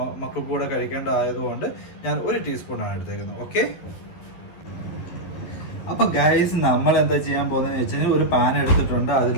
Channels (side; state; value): right; late; 11 ms